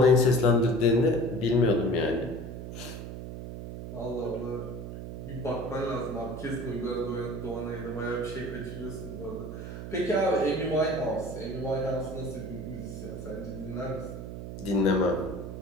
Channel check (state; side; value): noise; right; hum, 8 dB below the sound